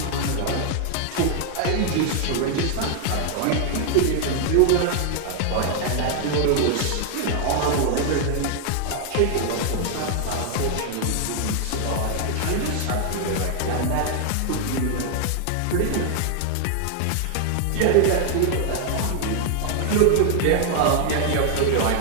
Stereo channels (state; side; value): different; both; correlation 0.00